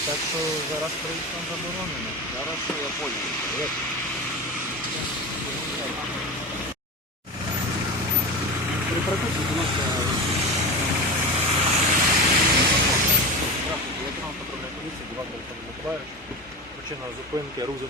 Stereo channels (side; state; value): both; normal; correlation 0.25